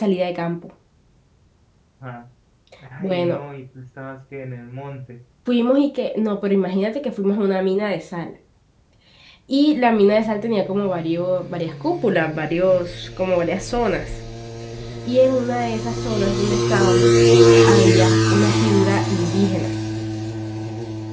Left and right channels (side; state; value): both; identical; correlation 1.00